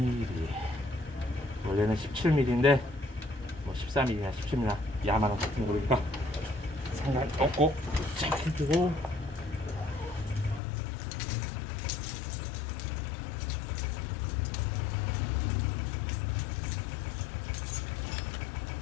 원래는 17mm인데 뭐 14mm나 17mm나 야만한 같은 거니까 상관없고, 쫙 해주고,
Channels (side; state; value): right; drops out; at 10.6 s